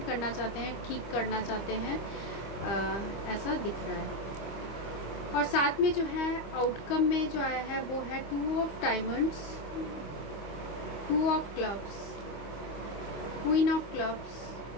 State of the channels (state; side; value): late; right; 25 ms